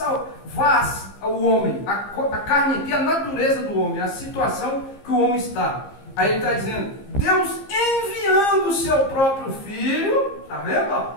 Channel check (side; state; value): right; late; 15 ms